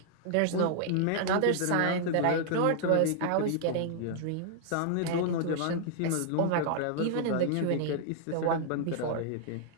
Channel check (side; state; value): both; different; correlation -0.01